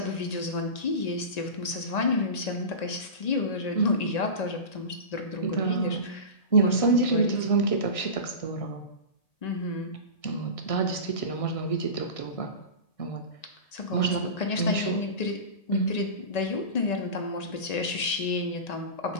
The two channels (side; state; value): right; late; 1.9 ms